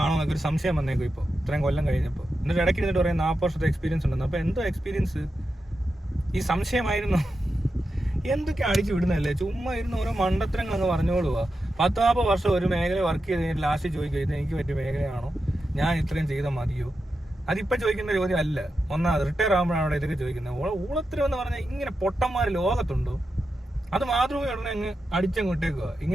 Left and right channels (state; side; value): normal; both; correlation 0.89